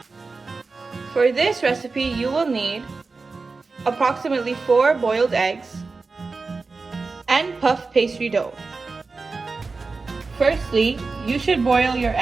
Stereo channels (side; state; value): left; quieter; 4.1 dB